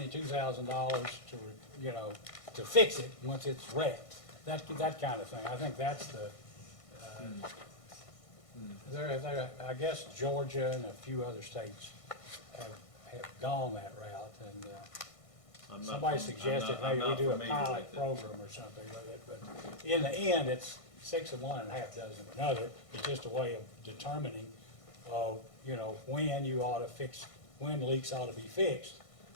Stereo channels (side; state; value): right; late; 1.6 ms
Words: to, you know, to fix it once it's wrecked? That kind of thing. I think that's the, I guess Georgia and a few other states have gone that route, and somebody suggested I'm maybe we not do a familiar pilot with it. program or something with it, but in the end, it's 6 of one and a half dozen of another. It's just a way of determining, you know, when you ought to fix, when leaks ought to be fixed.